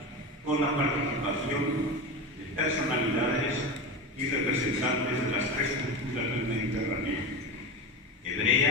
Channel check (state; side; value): normal; both; correlation 0.23